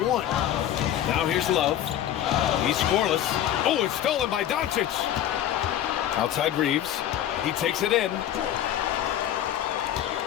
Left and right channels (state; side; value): quieter; right; 11.2 dB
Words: Now here's Love. He's scoreless. Oh, it's stolen by Doncic. Outside Reeves. He takes it in. 2